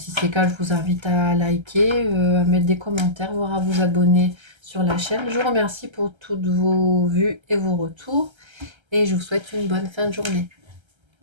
c'est le cas, je vous invite à liker, à mettre des commentaires, voire à vous abonner sur la chaîne. Je vous remercie pour toutes vos vues et vos retours. Et je vous souhaite une bonne fin de journée.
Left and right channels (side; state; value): left; late; 1.3 ms